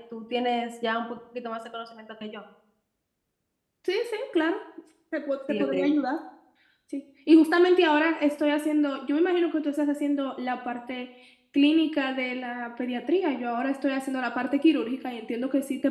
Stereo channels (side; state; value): both; identical; correlation 1.00